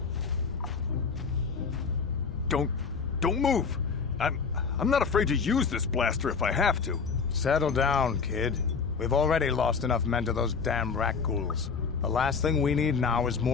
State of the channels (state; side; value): quieter; right; 5.5 dB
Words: Don't move. I'm not afraid to use this blaster if I have to. Settle down, kid. We've already lost enough men to those damn rat ghouls. The last thing we need now is